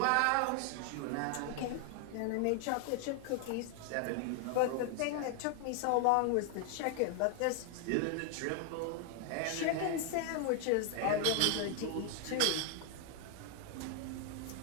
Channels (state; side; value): different; both; correlation 0.00